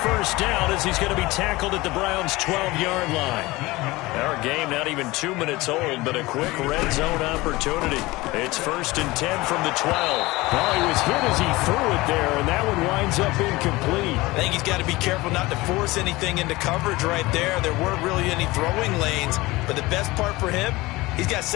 1st down as he's going to be tackled at the Browns' 12-yard line. Our game not even 2 minutes old, but a quick red zone opportunity. It's 1st and 10 from the 12. Well, he was hit as he threw it there, and that one winds up incomplete. I think he's got to be careful not to force anything into coverage right there. There weren't really any throwing lanes, but the best part for him, he's got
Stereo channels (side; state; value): right; quieter; 20.7 dB